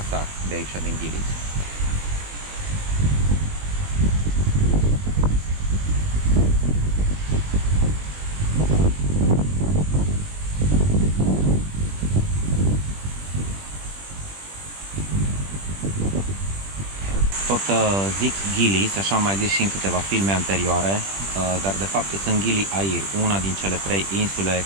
de aici din Ghilis. Tot zic Ghilis, așa am mai zis și în câteva filme anterioare, dar de fapt sunt Gili Air, una din cele 3 insule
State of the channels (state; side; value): late; left; 20 ms